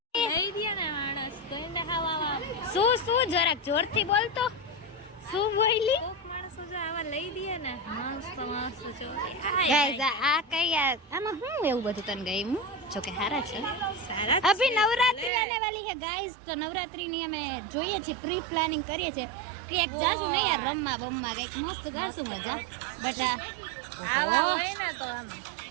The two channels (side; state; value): left; drops out; at 15.3 s